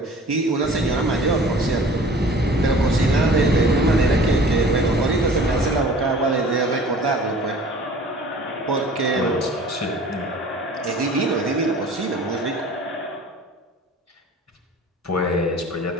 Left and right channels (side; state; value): both; normal; correlation 0.46